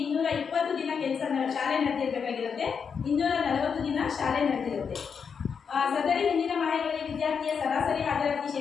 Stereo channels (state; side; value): quieter; right; 6.3 dB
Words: ದಿನ ಶಾಲೆ ನಡೆದಿರಬೇಕಾಗಿರುತ್ತೆ. 240 ದಿನ ಶಾಲೆ ನಡೆದಿರುತ್ತೆ. ಸದರಿ ಹಿಂದಿನ ಮಾಹಿತಿಯಲ್ಲಿ ವಿದ್ಯಾರ್ಥಿಯ ಸರಾಸರಿ ಹಾಜರಾತಿ